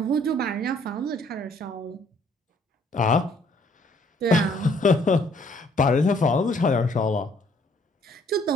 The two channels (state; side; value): normal; both; correlation 0.63